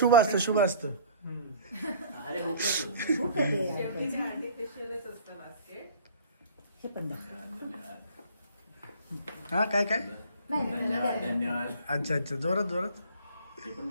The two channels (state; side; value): inverted; both; correlation -0.49